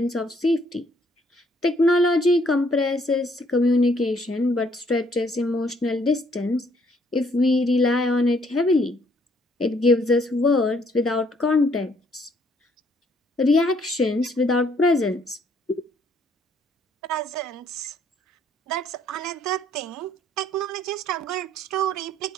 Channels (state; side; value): normal; both; correlation 0.66